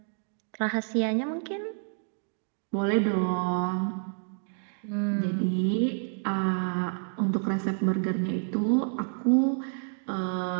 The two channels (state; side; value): silent; left; 57 dB below the other